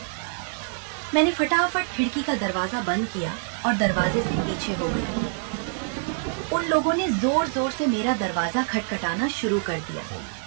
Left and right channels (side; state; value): left; silent; 61 dB below the other